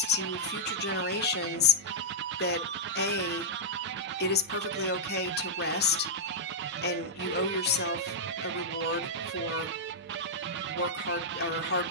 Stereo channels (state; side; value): normal; both; correlation -0.07